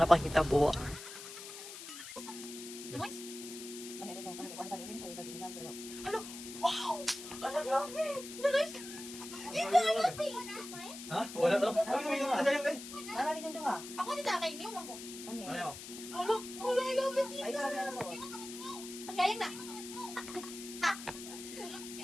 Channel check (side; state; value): left; noise; hiss, 11 dB below the sound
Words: panghitabo. Hello. Wow! Ano grabe? Nice. Dito ano Ha? Wala to? Ano yung asa yung kay? Ano rin yung duha? Ako dito kay niyo man ko. Ano? Ano? Hello, hello, I love it. Ay sabi na sa. Kaya na.